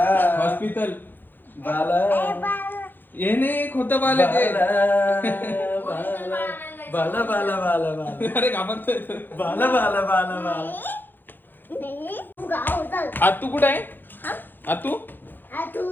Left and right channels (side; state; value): right; late; 0.092 ms